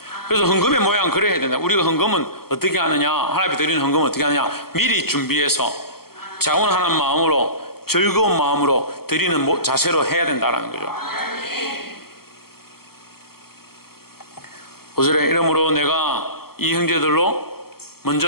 그래서 헌금의 모양 그래야 된다. 우리가 헌금은 어떻게 하느냐, 하나님 앞에 드리는 헌금은 어떻게 하느냐, 미리 준비해서 자원하는 마음으로, 즐거운 마음으로 드리는 자세로 해야 된다는 거죠. 5절에 이러므로 내가 이 형제들로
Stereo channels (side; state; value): right; late; 0.94 ms